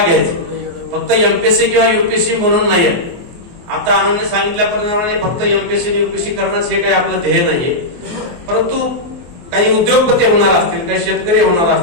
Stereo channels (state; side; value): late; left; 24 ms